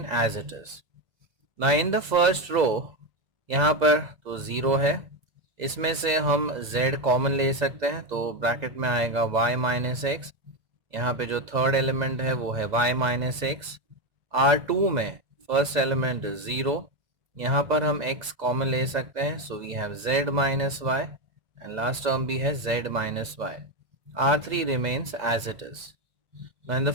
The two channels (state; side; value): late; left; 2.0 ms